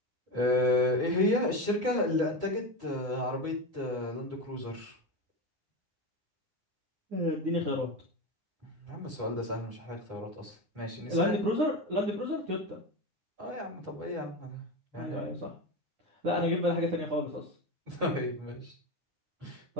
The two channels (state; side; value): late; left; 9.7 ms